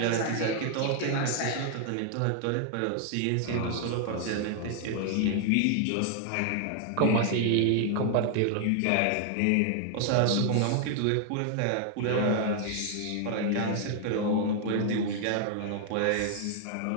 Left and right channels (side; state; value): both; different; correlation 0.00